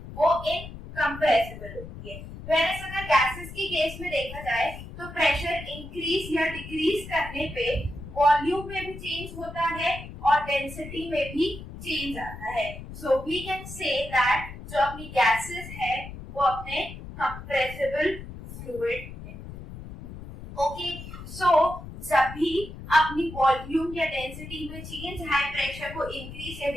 वो इनकम्प्रेसिबल होती है। वेयरएज अगर गैसेस की केस में देखा जाए तो प्रेशर इंक्रीज या डिक्रीज करने पे वॉल्यूम में भी चेंज होता है और डेंसिटी में भी चेंज आता है। So we can say that जो अपनी गैसेस है वो अपने कंप्रेसिबल फ्लूइड है। ओके, सो जब भी अपनी वॉल्यूम या डेंसिटी में चेंज हाई प्रेशर को इंक्रीज या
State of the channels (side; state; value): left; noise; rumble, 12 dB below the sound